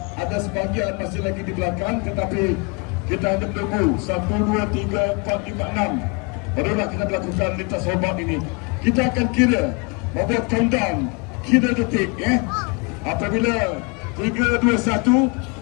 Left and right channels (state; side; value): quieter; right; 31.7 dB